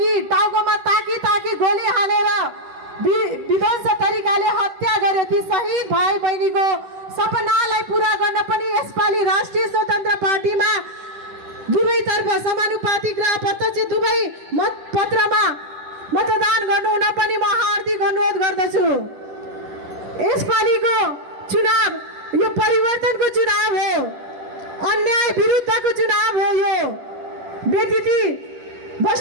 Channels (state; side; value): late; left; 11 ms